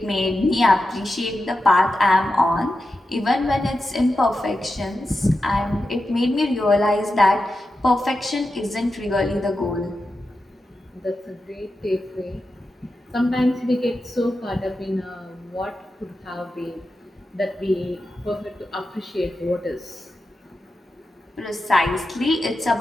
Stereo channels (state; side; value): normal; both; correlation 0.90